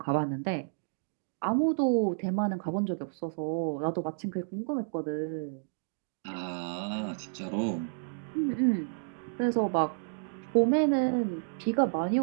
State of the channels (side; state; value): left; silent; digital silence